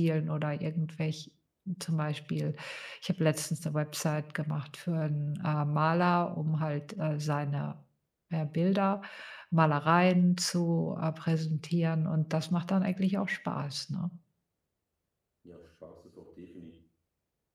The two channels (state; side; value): identical; both; correlation 1.00